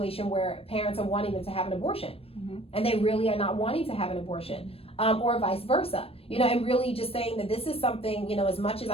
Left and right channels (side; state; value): right; late; 0.28 ms